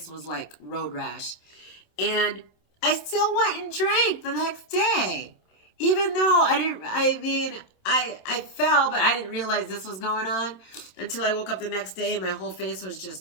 was like road rash. And I still went and drank the next day. Even though I fell, but I didn't realize this was going on until I woke up the next day and my whole face was just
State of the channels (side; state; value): right; late; 27 ms